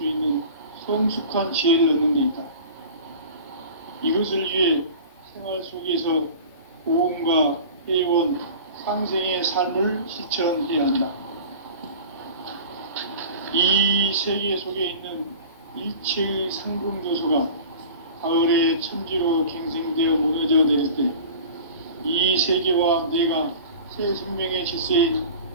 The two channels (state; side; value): inverted; both; correlation -0.38